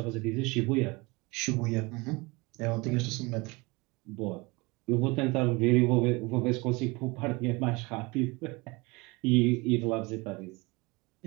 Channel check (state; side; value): quieter; left; 25.1 dB